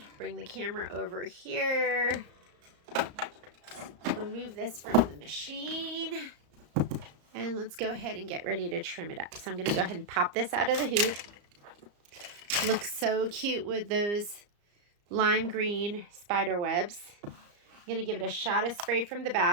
bring the camera over here. Remove this from the machine. And let's go ahead and get ready to trim it up. So I'm gonna go ahead and pop this out of the hoop. Looks so cute with those lime green spider webs. I'm gonna give it a shot of spray from the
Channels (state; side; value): late; left; 34 ms